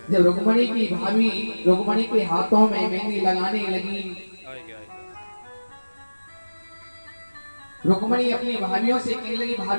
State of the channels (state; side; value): inverted; both; correlation -1.00